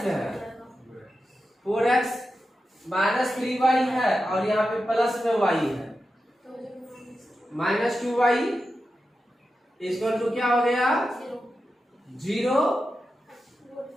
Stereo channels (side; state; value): both; normal; correlation 0.90